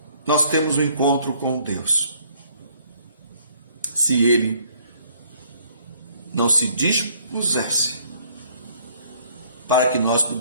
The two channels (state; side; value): inverted; both; correlation -0.62